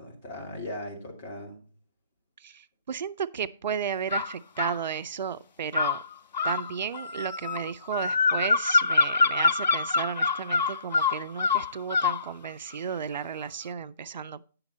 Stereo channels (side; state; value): both; inverted; correlation -0.61